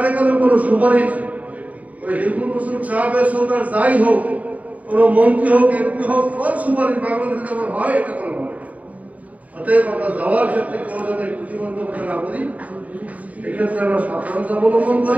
কোনো সুপারিশ ওই হিন্দু মুসলিম সাহাবের সরকার যাই হোক, কোনো মন্ত্রী হোক, এমপি হোক, সব সুপারিশ বাংলাদেশে যেমন হয় এটা কোনো হয়। অতএব আমরা যাওয়ার ক্ষেত্রে কেউ যেন প্রতিবন্ধকতা না করি, এক্ষেত্রে আমরা সাবধানতা অবলম্বন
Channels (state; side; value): late; left; 0.071 ms